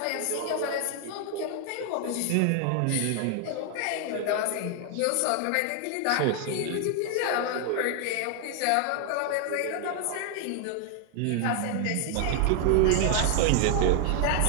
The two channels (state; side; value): different; both; correlation 0.00